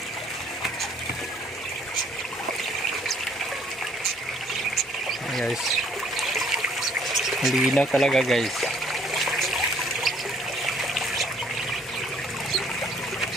Guys, malinaw talaga guys.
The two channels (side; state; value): both; normal; correlation 0.62